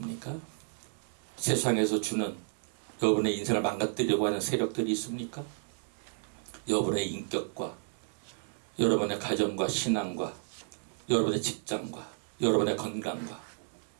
세상에서 주는 여러분의 인생을 망가뜨리려고 하는 세력들이 있습니까? 여러분의 인격과 여러분의 가정과 신앙과 여러분의 직장과 여러분의 건강과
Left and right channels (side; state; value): left; silent; 56 dB below the other